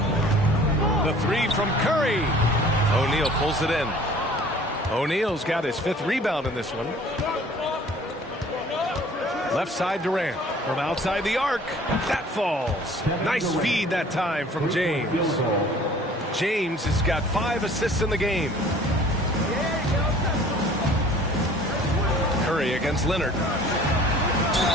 The 3 from Curry. O'Neal pulls it in. O'Neal's got his 5th rebound in this one. Left side Durant. From outside the arc. That falls. Nice feed that time from James. James has got 5 assists in the game. Curry against Leonard.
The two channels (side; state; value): both; normal; correlation 0.51